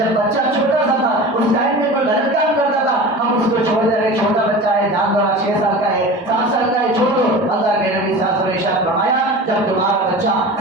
بچہ چھوٹا سا تھا اس ٹائم میں کوئی غلط کام کرتا تھا ہم اس کو چھوڑ دے رہے، چھوٹا بچہ ہے، جان دو 6 سال کا ہے، 7 سال کا ہے، چھوڑ دو۔ اللہ کے نبی صلی اللہ علیہ وسلم نے ارشاد فرمایا جب تمہارا بچہ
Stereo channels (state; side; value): normal; both; correlation 0.34